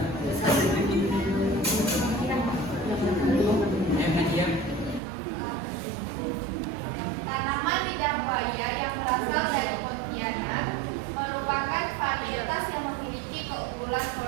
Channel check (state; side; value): drops out; left; at 5.0 s